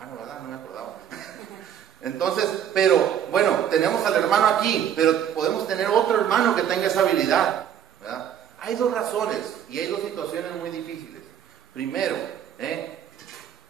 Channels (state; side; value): quieter; left; 9.4 dB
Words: ¿verdad? No me acordaba. Entonces, pero bueno, tenemos al hermano aquí, pero podemos tener otro hermano que tenga esa habilidad, ¿verdad? Hay dos razones y hay dos situaciones muy difíciles. Primero,